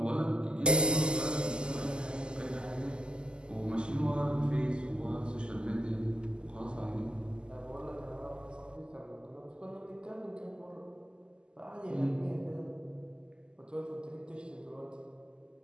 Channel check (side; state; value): left; late; 0.048 ms